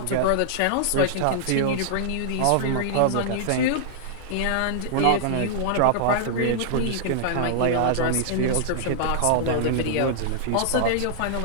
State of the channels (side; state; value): both; different; correlation -0.01